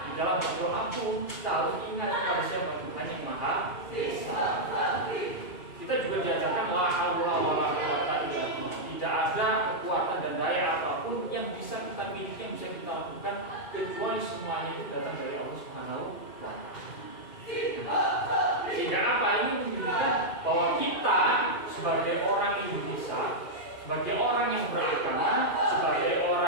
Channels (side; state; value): right; late; 2.5 ms